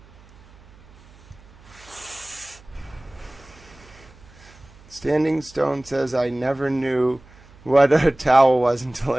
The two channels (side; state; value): right; noise; hum, 25 dB below the sound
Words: Standing Stone says, I never knew what a towel was until